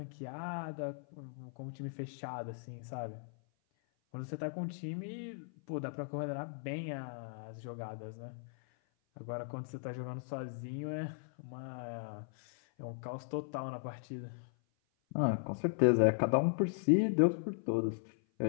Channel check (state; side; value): silent; right; 53 dB below the other